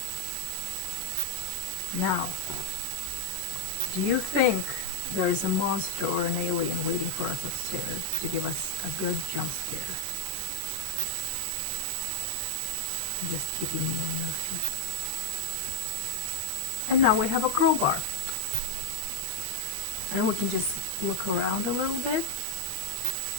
Now, do you think there is a monster or an alien waiting for us upstairs to give us a good jump scare? Just keeping you on your feet. And now we have a crowbar. And we can just look around a little bit.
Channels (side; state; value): right; late; 21 ms